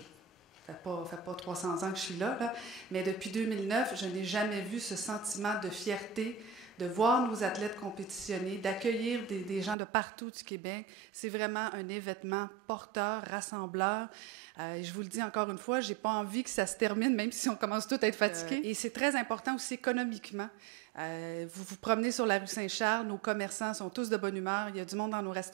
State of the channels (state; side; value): drops out; left; at 9.8 s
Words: ça fait pas 300 ans que je suis là, mais depuis 2009, je n'ai jamais vu ce sentiment de fierté de voir nos athlètes compétitionner, d'accueillir des gens de partout du Québec. C'est vraiment un événement porteur, rassembleur. Je vous le dis encore une fois, j'ai pas envie que ça se termine, même si on commence tous à être fatigués. Et c'est très important aussi économiquement. Vous vous promenez sur la rue Saint-Charles, nos commerçants sont tous de bonne humeur, il y a du monde dans nos